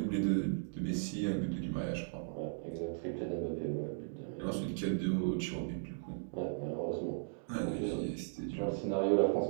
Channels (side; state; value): left; silent; digital silence